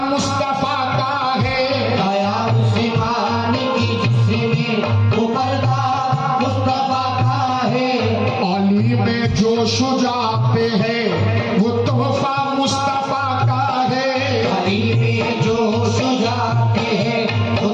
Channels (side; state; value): both; identical; correlation 1.00